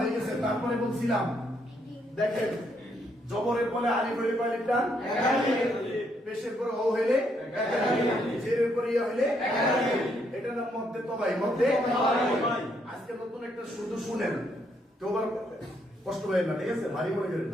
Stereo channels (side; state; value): both; normal; correlation 0.73